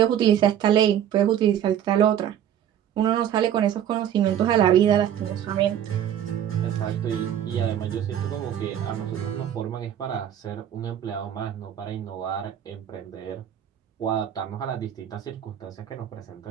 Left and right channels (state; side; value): quieter; left; 10.2 dB